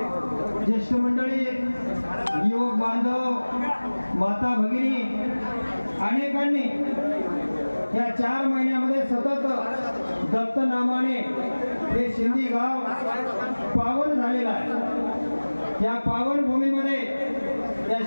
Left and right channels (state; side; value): inverted; both; correlation -1.00